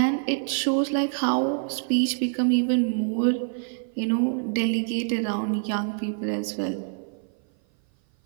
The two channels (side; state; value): left; silent; 56 dB below the other